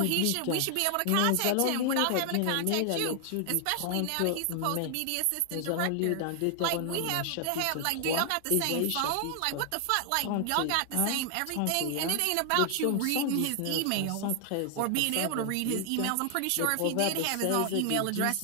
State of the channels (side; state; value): both; different; correlation 0.00